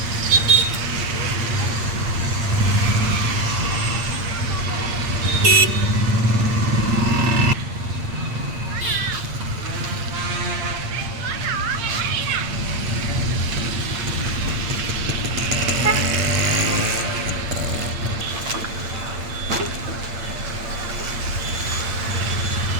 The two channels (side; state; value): left; late; 8.7 ms